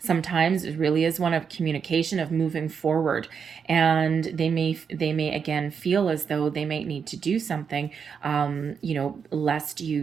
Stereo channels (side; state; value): left; quieter; 6.5 dB